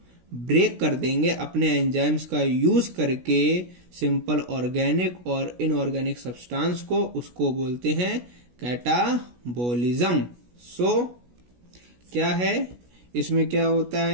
ब्रेक कर देंगे अपने एंजाइम्स का यूज करके सिंपल ऑर्गेनिक और इनऑर्गेनिक सब्सटेंस को, उसको बोलते हैं कैटाबोलिज्म। सो क्या है इसमें, क्या होता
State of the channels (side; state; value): left; late; 16 ms